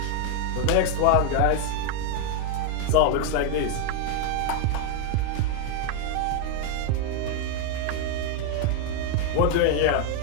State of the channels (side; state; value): both; different; correlation 0.00